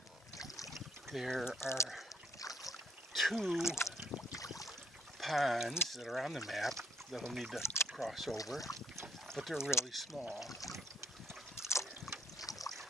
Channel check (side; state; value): both; normal; correlation 0.67